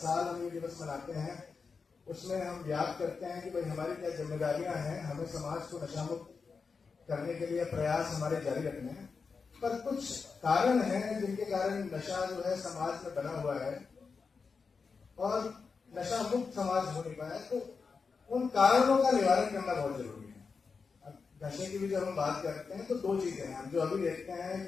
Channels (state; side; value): quieter; right; 5.1 dB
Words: हम ये दिवस मनाते हैं। उसमें हम याद करते हैं कि भाई हमारी क्या जिम्मेदारियां हैं, हमें समाज को नशा मुक्त करने के लिए प्रयास हमारे जारी रखने हैं। पर कुछ कारण हैं जिनके कारण नशा जो है समाज में बना हुआ है और नशा मुक्त समाज हो नहीं पाया। तो उन कारणों का निवारण करना बहुत जरूरी है। अब नशे की भी जब हम बात करते हैं तो दो चीजें हैं हम जो अभी देखते हैं